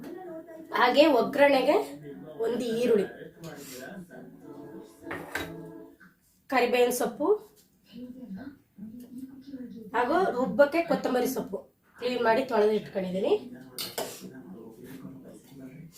ಹಾಗೆ ಒಗ್ಗರಣೆಗೆ 1 ಈರುಳ್ಳಿ, ಕರಿಬೇವಿನ ಸೊಪ್ಪು ಹಾಗೂ ರುಬ್ಬಕ್ಕೆ ಕೊತ್ತಂಬರಿ ಸೊಪ್ಪು ಕ್ಲೀನ್ ಮಾಡಿ ತೊಳೆದು ಇಟ್ಕೊಂಡಿದ್ದೀನಿ.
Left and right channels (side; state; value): both; identical; correlation 1.00